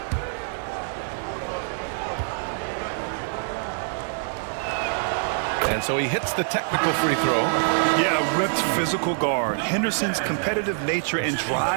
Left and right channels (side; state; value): left; silent; 62 dB below the other